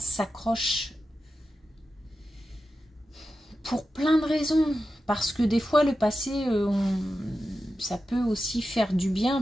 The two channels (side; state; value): both; normal; correlation 0.91